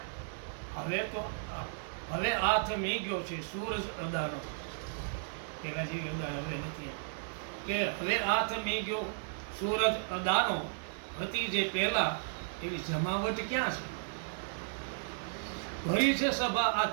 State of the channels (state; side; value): silent; left; 55 dB below the other